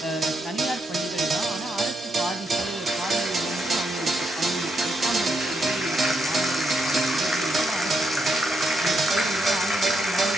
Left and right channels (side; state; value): both; normal; correlation 0.79